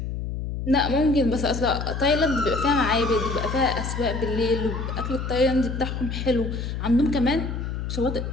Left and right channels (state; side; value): noise; left; hum, 4 dB below the sound